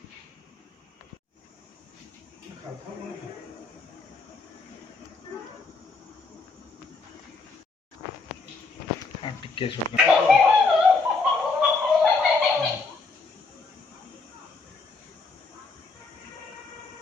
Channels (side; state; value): right; quieter; 4.1 dB